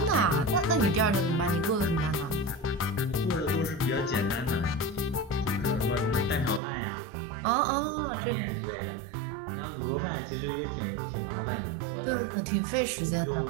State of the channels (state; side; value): drops out; left; at 6.6 s